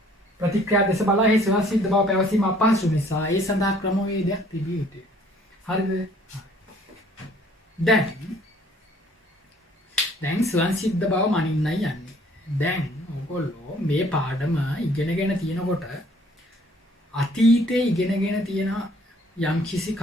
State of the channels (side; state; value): both; normal; correlation 0.58